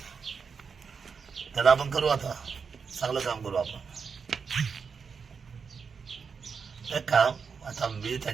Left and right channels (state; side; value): quieter; left; 5.8 dB